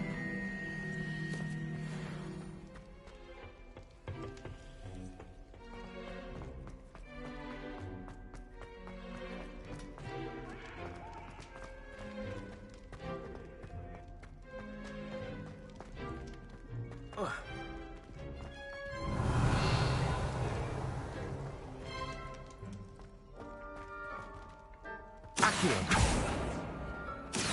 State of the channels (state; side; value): identical; both; correlation 1.00